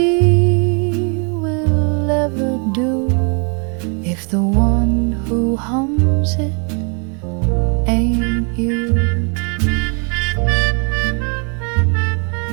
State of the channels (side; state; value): left; quieter; 38.4 dB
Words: will ever do if the one who hums it ain't you.